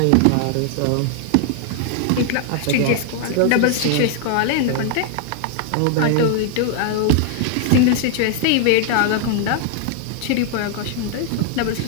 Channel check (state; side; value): different; both; correlation 0.00